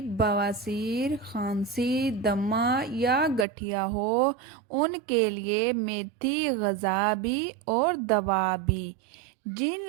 بواسیر، کھانسی، دمہ یا گٹھیا ہو ان کے لیے میتھی غذا بھی اور دوا بھی۔ جن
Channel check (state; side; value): drops out; left; at 3.5 s